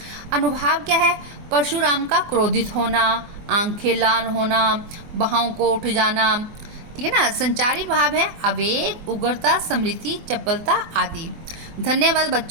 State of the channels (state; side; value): late; left; 24 ms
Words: अनुभाव क्या है, परशुराम का क्रोधित होना, आंखें लाल होना, बाहों को उठ जाना। ठीक है ना। संचारी भाव है आवेग, उग्रता, स्मृति, चपलता आदि। धन्यवाद